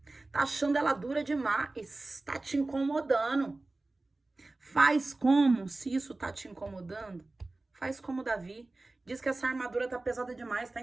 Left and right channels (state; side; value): quieter; left; 3.1 dB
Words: Tá achando ela dura demais, tá te incomodando. Faz como, se isso tá te incomodando, faz como Davi. Diz que essa armadura tá pesada demais, tá